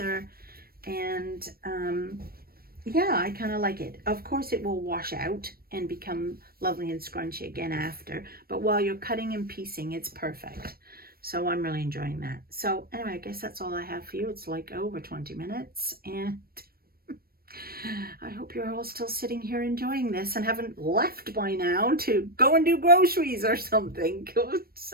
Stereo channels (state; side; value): late; left; 0.44 ms